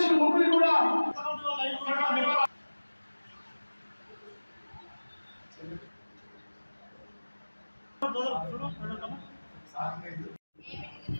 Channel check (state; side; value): inverted; both; correlation -1.00